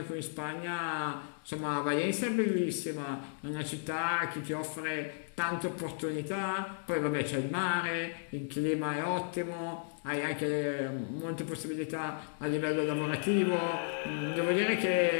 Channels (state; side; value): silent; right; digital silence